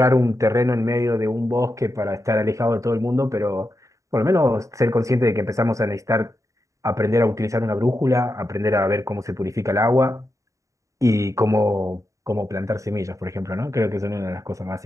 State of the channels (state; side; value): late; left; 0.16 ms